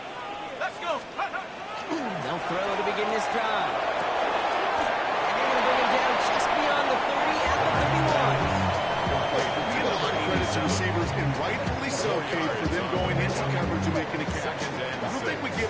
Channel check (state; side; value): identical; both; correlation 1.00